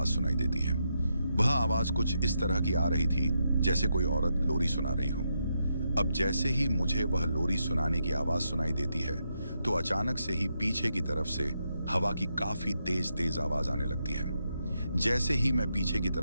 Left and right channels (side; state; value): both; inverted; correlation -0.82